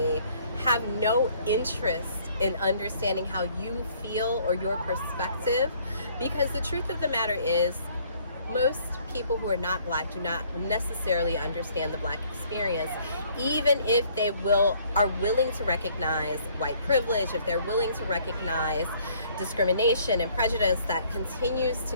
have no interest in understanding how you feel or your perspective. Because the truth of the matter is, most people who are not Black do not necessarily understand the Black experience, even if they are willing to recognize white privilege, if they're willing to recognize discrimination and prejudice that continues to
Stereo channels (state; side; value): inverted; both; correlation -0.61